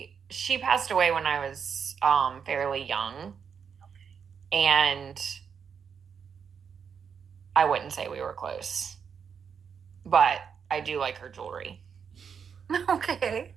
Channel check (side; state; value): left; quieter; 6.8 dB